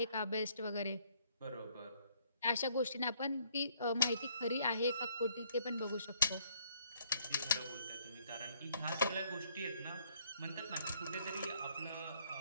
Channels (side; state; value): both; inverted; correlation -0.66